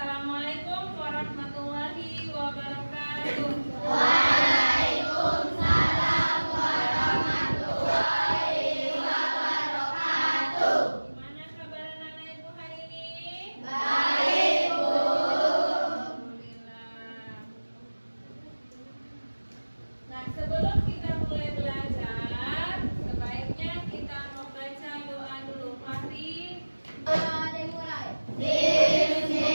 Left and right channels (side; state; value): both; inverted; correlation -1.00